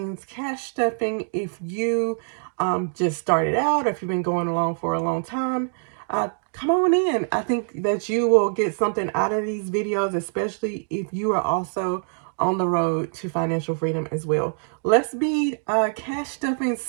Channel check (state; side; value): silent; left; digital silence